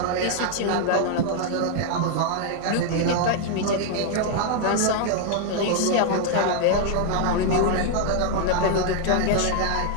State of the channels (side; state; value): both; different; correlation 0.00